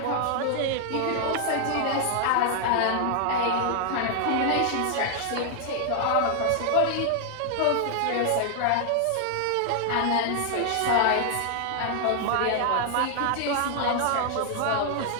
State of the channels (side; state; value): both; different; correlation 0.00